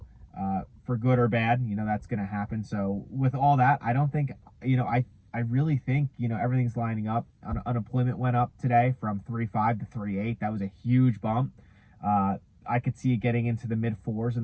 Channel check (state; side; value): identical; both; correlation 1.00